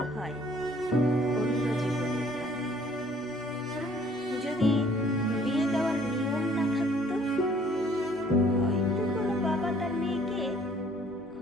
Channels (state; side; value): normal; both; correlation 0.58